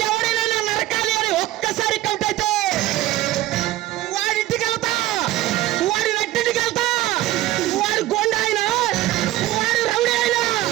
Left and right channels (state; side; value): quieter; left; 15.7 dB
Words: ఎవరైనా నా నరకాలి అని ఒక్కసారి కంటైతే వాడింటికి వెళ్తా, వాడి నట్టింటికి వెళ్తా. వాడు గోండా అయినా, వాడు రౌడీ అయినా,